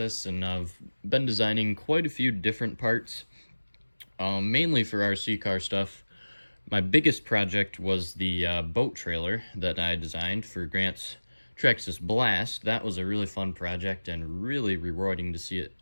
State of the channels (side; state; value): both; inverted; correlation -1.00